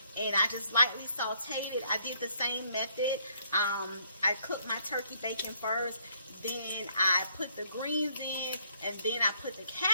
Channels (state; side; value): inverted; both; correlation -0.67